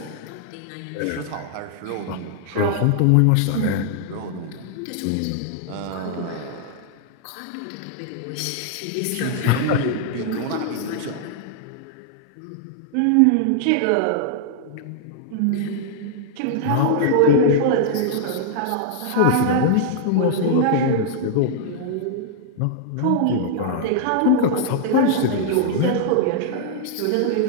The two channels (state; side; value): different; both; correlation -0.01